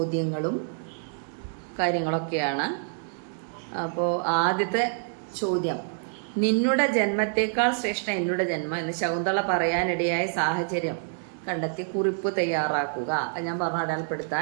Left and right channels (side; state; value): left; silent; digital silence